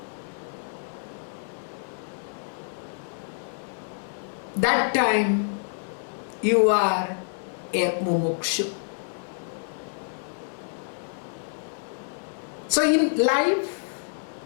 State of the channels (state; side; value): silent; right; digital silence